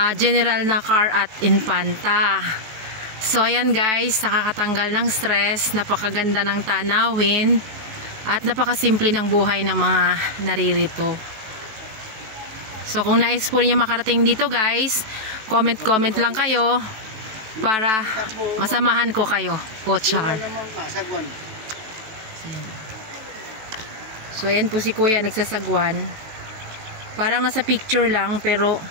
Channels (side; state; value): left; late; 18 ms